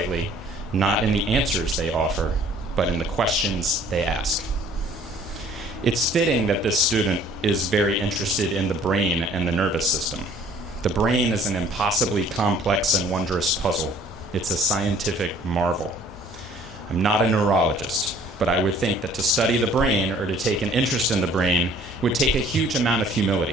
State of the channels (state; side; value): normal; both; correlation 0.55